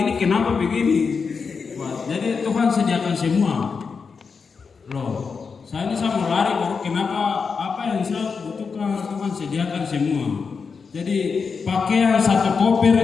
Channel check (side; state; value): right; quieter; 5.4 dB